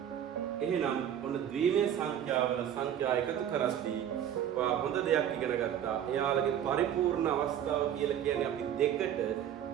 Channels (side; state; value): left; quieter; 9.9 dB